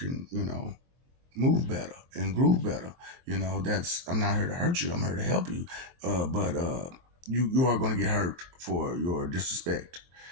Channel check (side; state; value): left; late; 23 ms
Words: move better and groove better. That's, I'm not here to hurt you. I'm here to help you. But you are going to get hurt for your disrespect,